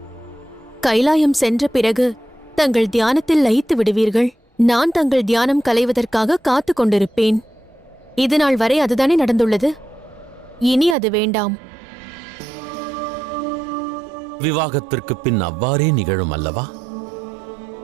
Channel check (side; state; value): left; drops out; at 11.0 s